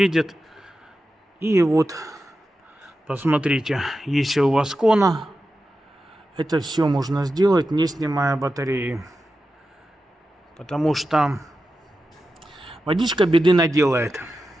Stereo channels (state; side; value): normal; both; correlation 0.91